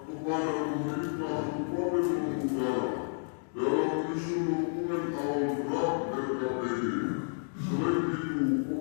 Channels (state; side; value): silent; right; digital silence